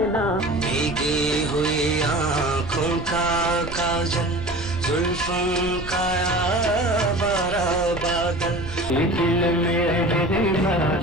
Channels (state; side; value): noise; right; rumble, 13 dB below the sound